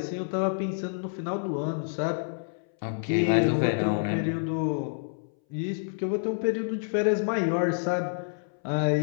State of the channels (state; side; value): silent; right; 59 dB below the other